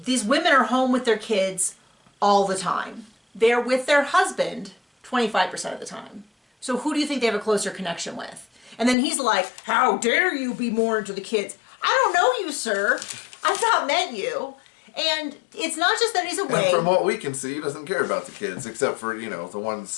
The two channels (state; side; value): drops out; right; at 9.0 s